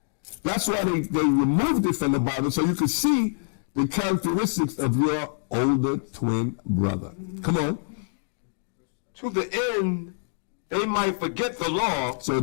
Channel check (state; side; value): silent; right; digital silence